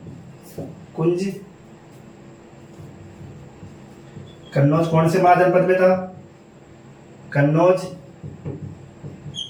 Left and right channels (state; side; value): identical; both; correlation 1.00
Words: कन्नौज कौन से महाजनपद में था? कन्नौज